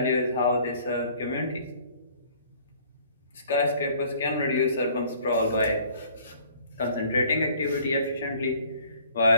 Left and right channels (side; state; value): both; inverted; correlation -0.55